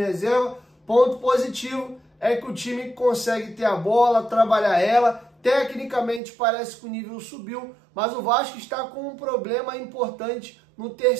Ponto positivo é que o time consegue ter a bola, trabalhar ela. Tecnicamente parece que o nível subiu, mas o Vasco está com um problema importante no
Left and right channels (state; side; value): drops out; left; at 6.2 s